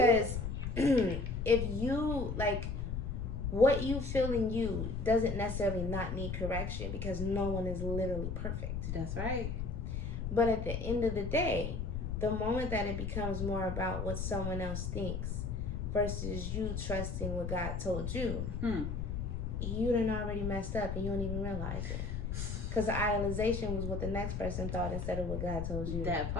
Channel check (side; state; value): left; noise; rumble, 3 dB below the sound